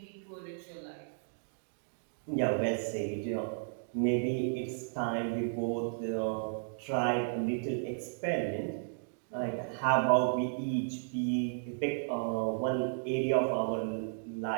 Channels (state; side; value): silent; left; digital silence